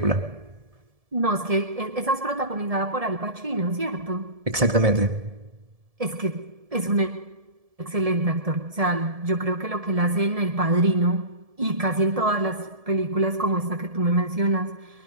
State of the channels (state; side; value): late; left; 1.7 ms